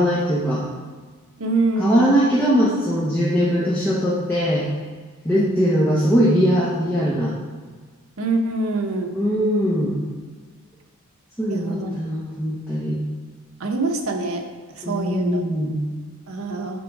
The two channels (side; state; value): both; normal; correlation 0.68